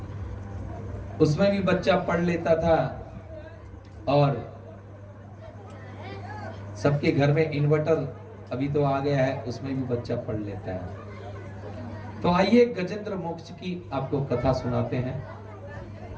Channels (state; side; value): identical; both; correlation 1.00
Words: उसमें भी बच्चा पढ़ लेता था और सबके घर में इन्वर्टर अभी तो आ गया है, उसमें भी बच्चा पढ़ लेता है। तो आइए गजेंद्र मोक्ष की आपको कथा सुनाते हैं।